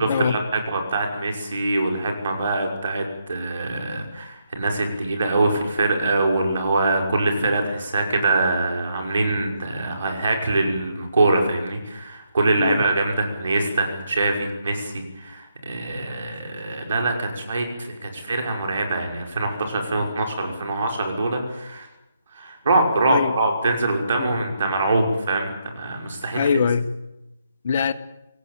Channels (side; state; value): both; inverted; correlation -0.77